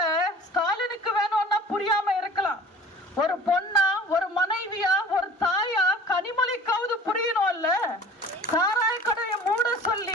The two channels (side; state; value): both; normal; correlation 0.44